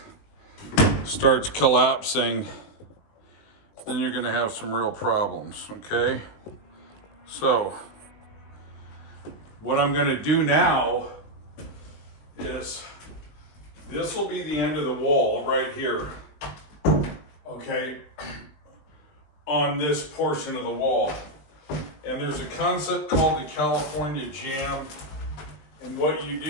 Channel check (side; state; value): right; late; 20 ms